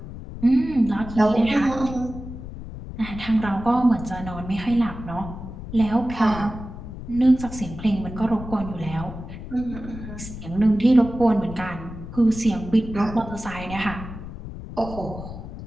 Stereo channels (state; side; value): noise; left; rumble, 11 dB below the sound